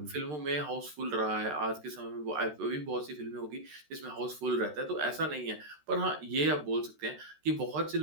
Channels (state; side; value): late; left; 13 ms